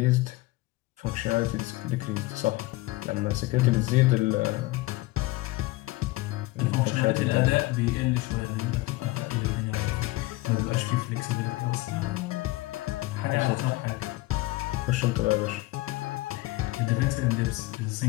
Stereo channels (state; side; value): quieter; right; 20.1 dB